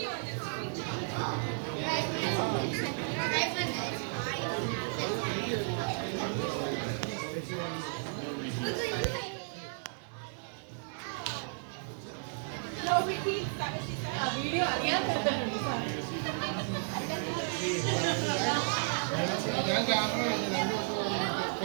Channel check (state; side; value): silent; left; digital silence